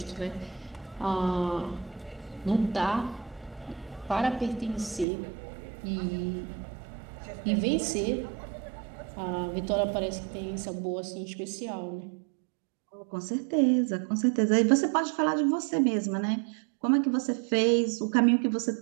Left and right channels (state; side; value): drops out; left; at 5.1 s